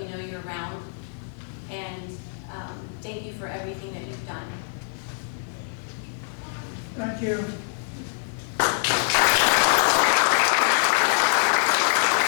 know you're around. And thank you for everything that you've done. Thank you.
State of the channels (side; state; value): right; silent; digital silence